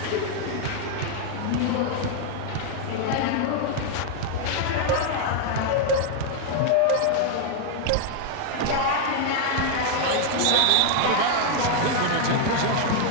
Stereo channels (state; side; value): different; both; correlation 0.00